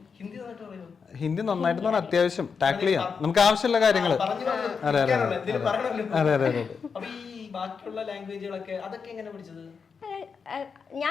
ഹിന്ദി നന്നായിട്ട് പറഞ്ഞാൽ അത്യാവശ്യം ടാക്കിൾ ചെയ്യാം, നമുക്ക് ആവശ്യമുള്ള കാര്യങ്ങൾ. അതെ അതെ അതെ അതെ അതെ. ബാക്കിയുള്ള ലാംഗ്വേജുകളൊക്കെ അതൊക്കെ എങ്ങനെ പഠിച്ചത്?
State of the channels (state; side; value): quieter; right; 5.8 dB